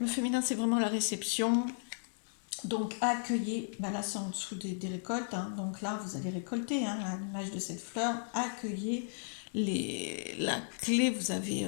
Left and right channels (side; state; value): right; silent; digital silence